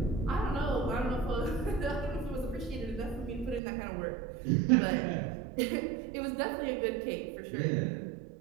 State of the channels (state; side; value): drops out; left; at 3.6 s